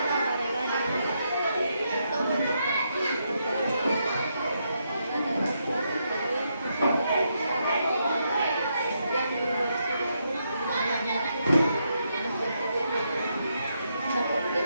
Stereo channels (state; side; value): inverted; both; correlation -0.80